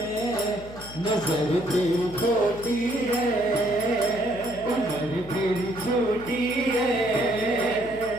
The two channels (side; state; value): left; noise; hum, 17 dB below the sound